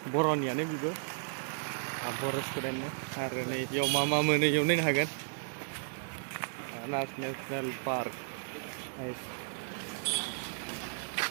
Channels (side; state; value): left; silent; 55 dB below the other